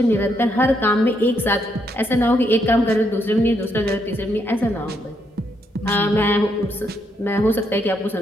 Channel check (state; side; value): normal; both; correlation 0.76